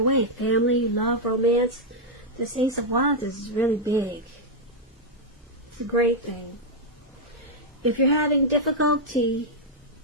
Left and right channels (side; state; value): both; normal; correlation -0.02